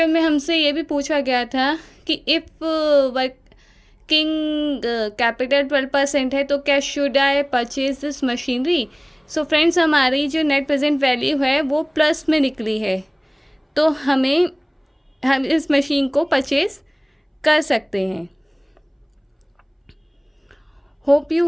में हमसे ये भी पूछा गया था कि इफ़ वर्किंग कैपिटल 12% है तो क्या should I purchase this machinery. So friends हमारी जो नेट प्रेजेंट वैल्यू है वो प्लस में निकली है, तो हम इस मशीन को परचेज कर सकते हैं। Hope you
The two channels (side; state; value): both; identical; correlation 1.00